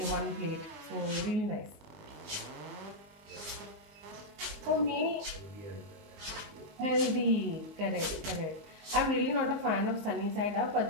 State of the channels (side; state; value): left; late; 19 ms